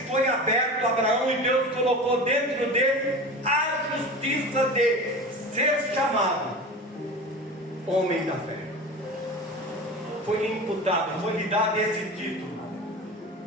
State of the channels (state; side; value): normal; both; correlation 0.31